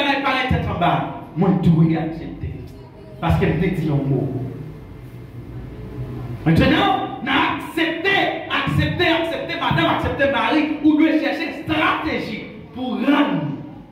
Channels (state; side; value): identical; both; correlation 1.00